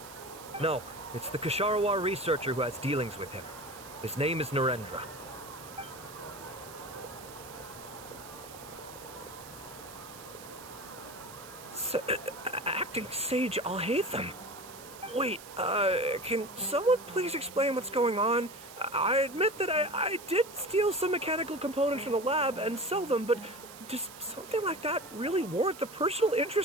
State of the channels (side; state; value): right; noise; hiss, 16 dB below the sound